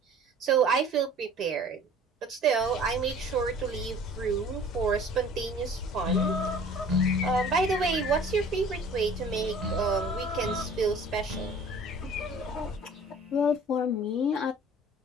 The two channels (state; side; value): normal; both; correlation 0.48